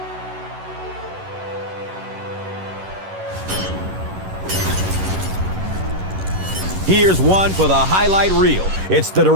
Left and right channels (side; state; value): left; late; 11 ms